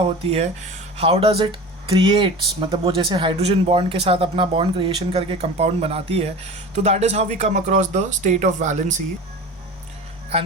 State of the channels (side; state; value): both; normal; correlation 0.34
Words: है, how does it creates, मतलब वो जैसे हाइड्रोजन बॉन्ड के साथ अपना बॉन्ड क्रिएशन करके कंपाउंड बनाती है, तो that is how we come across the state of valency.